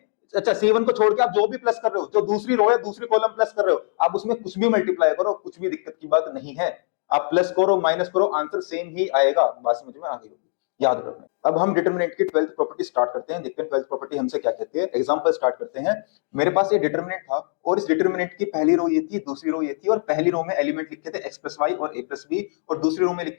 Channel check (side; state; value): right; silent; digital silence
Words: अच्छा, C1 को छोड़ के आप जो भी प्लस कर रहे हो, जो दूसरी रो है, दूसरी कॉलम प्लस कर रहे हो, आप उसमें कुछ भी मल्टीप्लाई करो, कुछ भी दिक्कत की बात नहीं है। आप प्लस करो माइनस करो, आंसर सेम ही आएगा। बात समझ में आ गई होगी, याद रखना। अब हम डिटरमिनेंट की 12th प्रॉपर्टी स्टार्ट करते हैं। देखते हैं 12th प्रॉपर्टी हमसे क्या कहती है। एग्जांपल स्टार्ट करते हैं। मेरे पास ये डिटरमिनेंट था और इस डिटरमिनेंट की पहली रो ये थी, दूसरी रो ये थी, और पहली रो में एलिमेंट लिखे थे x प्लस वाई और a प्लस बी, और दूसरी रो में